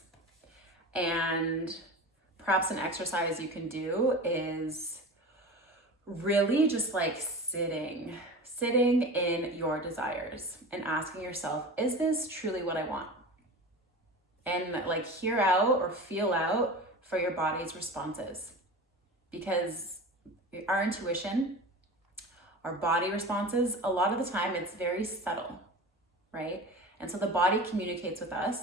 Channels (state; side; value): normal; both; correlation 0.32